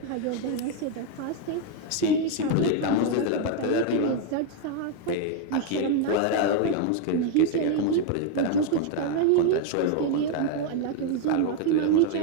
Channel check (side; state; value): both; different; correlation 0.01